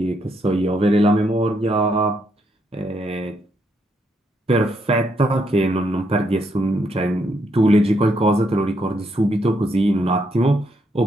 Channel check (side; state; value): both; normal; correlation 0.76